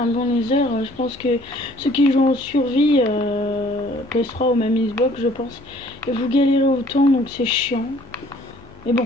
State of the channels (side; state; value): left; noise; hum, 26 dB below the sound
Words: bon nether. Je pense que ceux qui jouent en survie, PS3 ou même Xbox, je pense, et vous galérez autant, donc c'est chiant. Mais